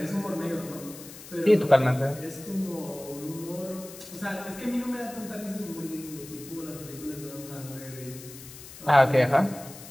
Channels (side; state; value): left; noise; hiss, 16 dB below the sound